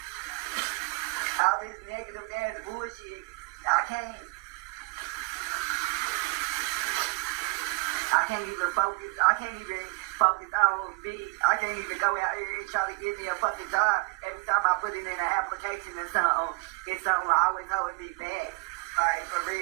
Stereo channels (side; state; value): left; quieter; 30.3 dB